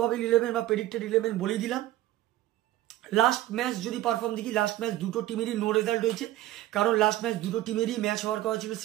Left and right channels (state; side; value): quieter; left; 14.8 dB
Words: 11 বা প্রেডিক্টেড 11 বলেই দিলাম। লাস্ট ম্যাচ যদি পারফর্ম দেখি, লাস্ট ম্যাচ দুটো টিমেরই নো রেজাল্ট হয়েছে, কারণ লাস্ট ম্যাচ দুটো টিমেরই ম্যাচ হওয়ার কথা ছিল।